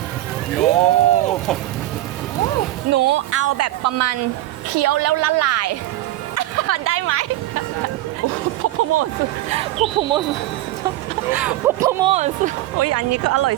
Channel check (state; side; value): quieter; left; 15.6 dB